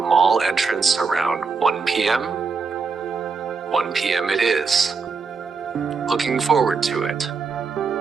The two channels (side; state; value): left; quieter; 5.0 dB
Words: entrance around 1 p.m. 1 p.m. it is. Looking forward to it.